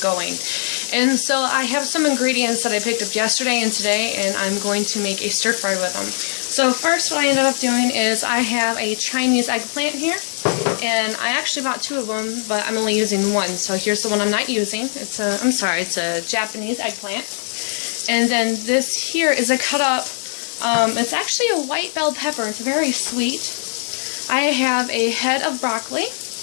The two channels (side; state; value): right; silent; digital silence